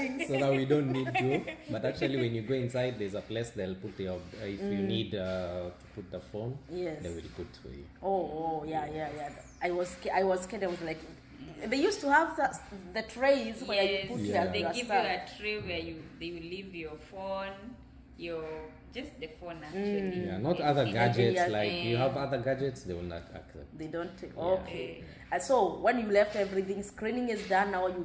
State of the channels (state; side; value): identical; both; correlation 1.00